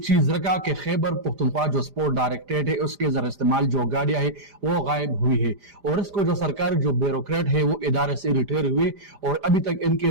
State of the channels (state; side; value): late; left; 5.0 ms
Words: रखा कि खैबर पख्तूनख्वा जो स्पोर्ट डायरेक्टरेट है उसके जर इस्तेमाल जो गाड़ियां है वो गायब हुई है, और इसको जो सरकारी जो ब्यूरोक्रेट है वो इदारे से रिटायर हुए और अभी तक इनके